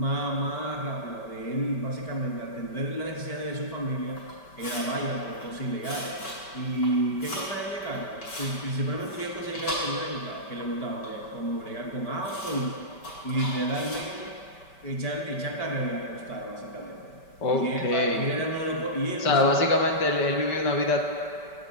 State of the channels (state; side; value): late; right; 5.2 ms